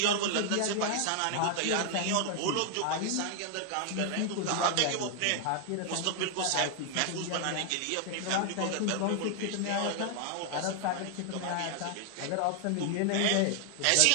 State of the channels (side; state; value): both; different; correlation 0.00